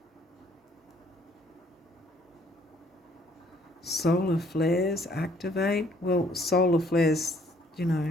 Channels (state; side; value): normal; both; correlation 0.63